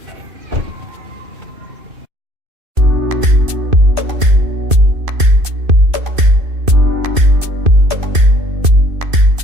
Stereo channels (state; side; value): late; left; 2.5 ms